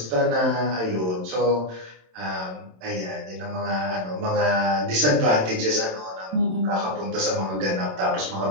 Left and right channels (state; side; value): late; left; 27 ms